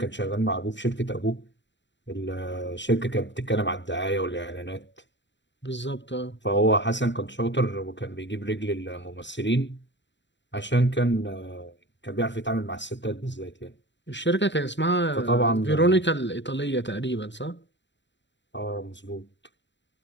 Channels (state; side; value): late; right; 0.52 ms